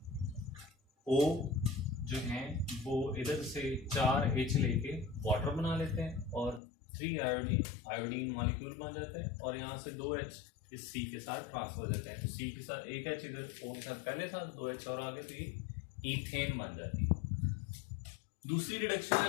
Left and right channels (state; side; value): drops out; right; at 6.6 s